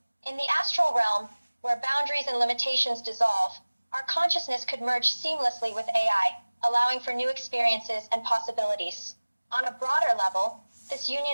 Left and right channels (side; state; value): both; inverted; correlation -1.00